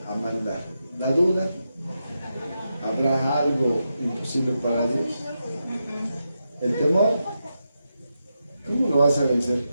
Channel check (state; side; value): inverted; both; correlation -0.87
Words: mandar. La duda, habrá algo imposible para Dios. El temor, ¿cómo lo vas a vencer?